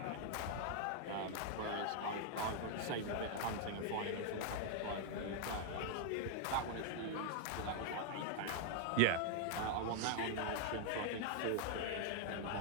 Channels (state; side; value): different; both; correlation 0.00